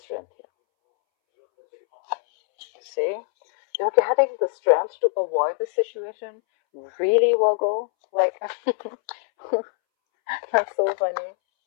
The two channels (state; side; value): silent; right; 63 dB below the other